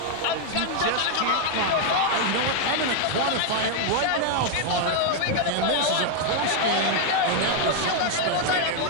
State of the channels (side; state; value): both; different; correlation 0.00